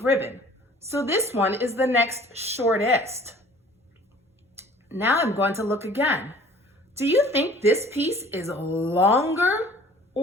ribbon. So this one is the next shortest. Now I'm going to look again. Do you think this piece is longer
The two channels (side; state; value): both; normal; correlation 0.51